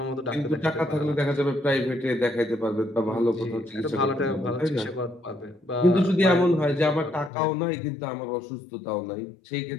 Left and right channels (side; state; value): right; drops out; at 7.3 s